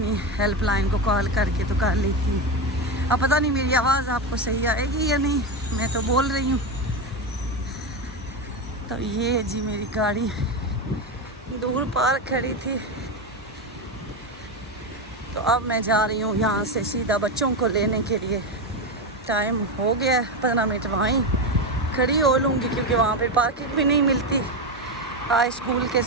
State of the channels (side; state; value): both; normal; correlation 0.14